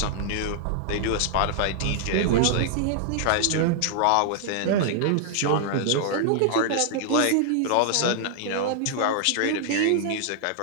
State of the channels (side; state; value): both; different; correlation -0.01